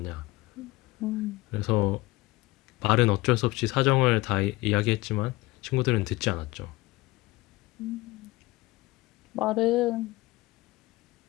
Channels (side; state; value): right; quieter; 20.0 dB